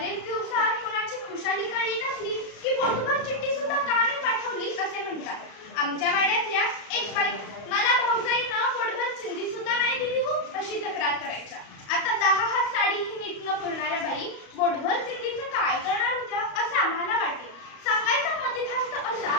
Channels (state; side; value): late; right; 35 ms